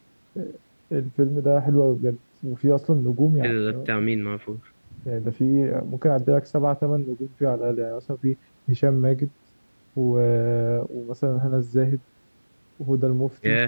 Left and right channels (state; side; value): inverted; both; correlation -1.00